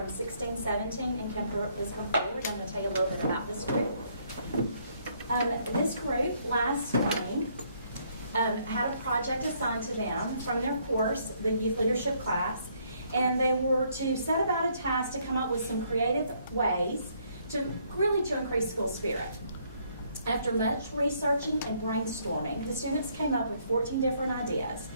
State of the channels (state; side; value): inverted; both; correlation -0.68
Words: 16-17, and please come forward. I'm going to tell you a little bit about this group. This group last spring had a project assigned to them from their course, the youth leadership class, and they were to set about a task to come up with some creative ways to increase school spirit. After much researching and brainstorming, the students came up with 14 different ideas.